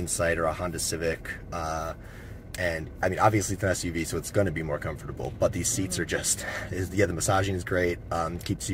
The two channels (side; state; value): both; identical; correlation 1.00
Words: or a Honda Civic. And I mean, obviously it's an SUV, so it's going to be more comfortable, but these seats are just, yeah, the massaging is great. Keeps